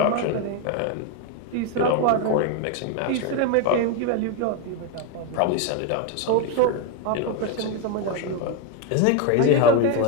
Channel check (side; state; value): both; different; correlation 0.01